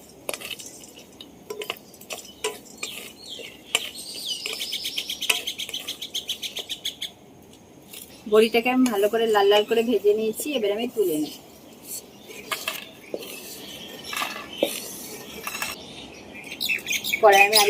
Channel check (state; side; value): identical; both; correlation 1.00